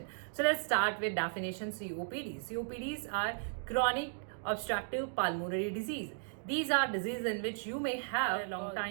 So let's start with definition COPD. COPDs are chronic obstructive pulmonary disease. These are diseases in which you may have a long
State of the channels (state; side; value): silent; left; digital silence